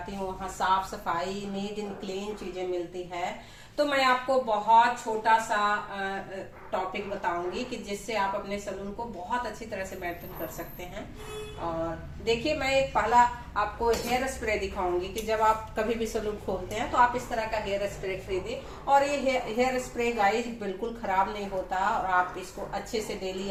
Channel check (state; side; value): identical; both; correlation 1.00